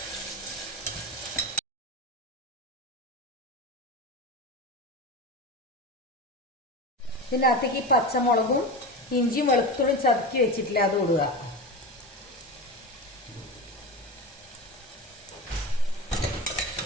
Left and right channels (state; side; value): normal; both; correlation 0.25